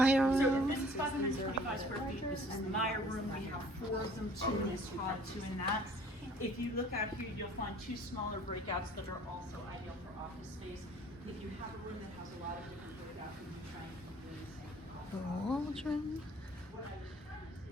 So room. this is 525 square feet. This is the Meyer room. We have 4 of them, 2 in this pod, 2 in that. If you look out here, you'll find 2 smaller breakouts that are also ideal for office space. If you have a room that has a lot of different breakouts, you can try and keep doing the same. The Waldron.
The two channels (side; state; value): both; normal; correlation 0.53